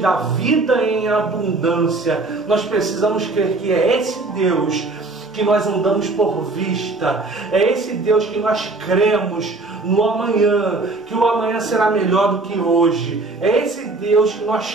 vida em abundância. Nós precisamos crer que é esse Deus que nós andamos por vista, é esse Deus que nós cremos no amanhã, que o amanhã será melhor do que hoje. É esse Deus que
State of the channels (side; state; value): left; quieter; 3.3 dB